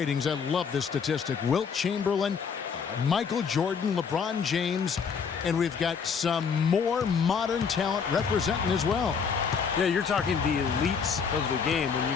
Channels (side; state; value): right; quieter; 6.2 dB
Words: I love this statistic. Wilt Chamberlain, Michael Jordan, LeBron James, and we've got some more modern talent representing as well. Yeah, you're talking the elites of the game when you